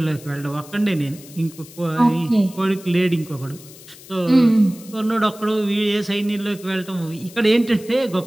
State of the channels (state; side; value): noise; left; hiss, 20 dB below the sound